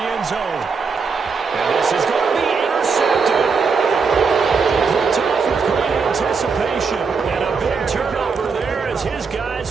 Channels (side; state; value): left; quieter; 5.2 dB